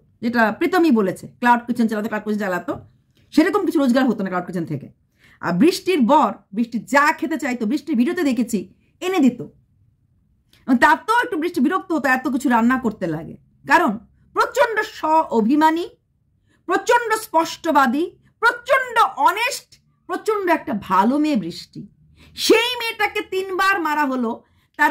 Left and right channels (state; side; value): identical; both; correlation 1.00